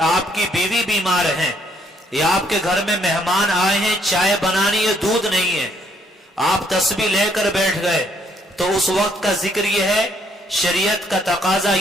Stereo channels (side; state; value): both; normal; correlation 0.68